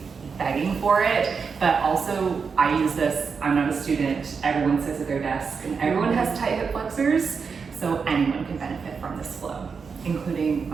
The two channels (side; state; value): left; quieter; 5.6 dB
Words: begging for it. But also, I use this, I'm not a student, everyone sits at their desk and everyone has tight hip flexors, so anyone can benefit from this flow, including